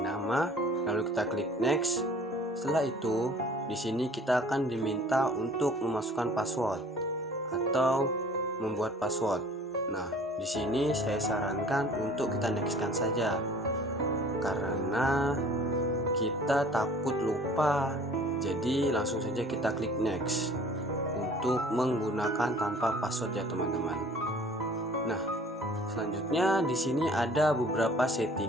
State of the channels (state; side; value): normal; both; correlation 0.50